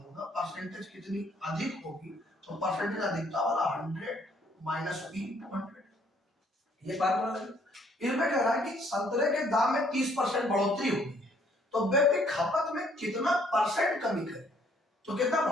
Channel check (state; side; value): normal; both; correlation 0.64